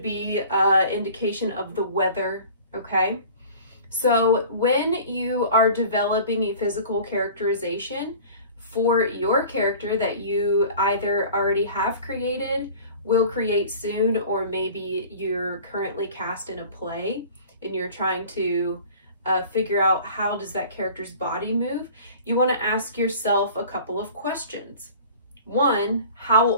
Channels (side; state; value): both; inverted; correlation -0.44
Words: be indication of the weather, okay? So when you are developing a physical characterization for your character that you either already have created, will create soon, or maybe you're currently cast in a play and you're trying to figure out how does that character's body move, you want to ask yourself a couple of questions. One, how